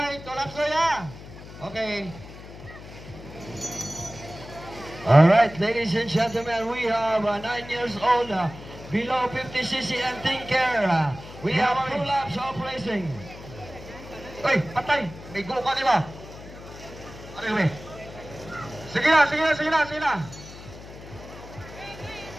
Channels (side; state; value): left; noise; hum, 15 dB below the sound